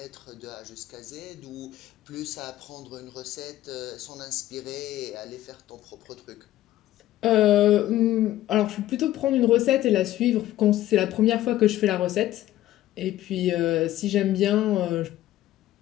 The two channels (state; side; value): quieter; right; 14.2 dB